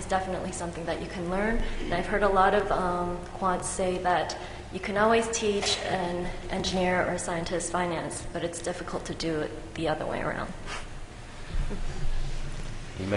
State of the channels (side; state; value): both; identical; correlation 1.00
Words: definitely something that you can learn. And I've heard a lot of quants say that you can always teach an engineer or a scientist finance, but it's difficult to do it the other way around.